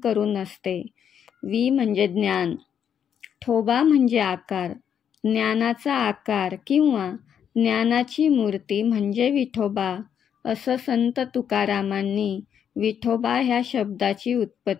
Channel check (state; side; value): quieter; right; 8.4 dB